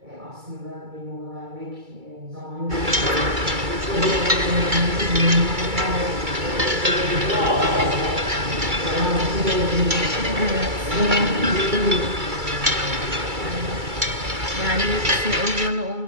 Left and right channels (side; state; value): left; late; 2.3 ms